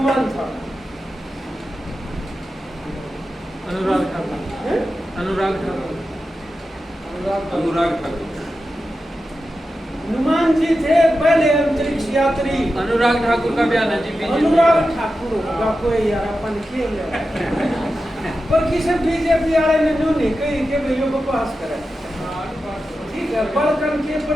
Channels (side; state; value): both; normal; correlation 0.91